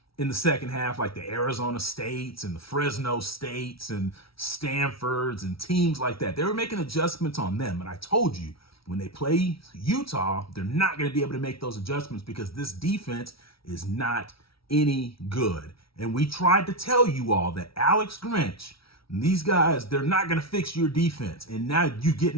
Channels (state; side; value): late; right; 0.75 ms